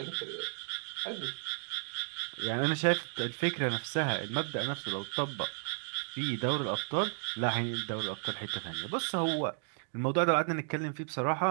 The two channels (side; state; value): left; silent; digital silence